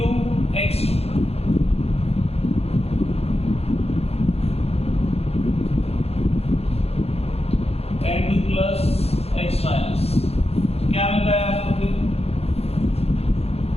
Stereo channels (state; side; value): late; right; 0.29 ms